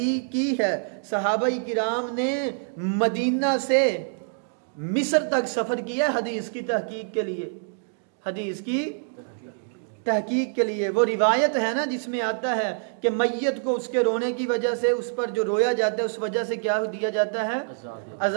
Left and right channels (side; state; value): left; silent; digital silence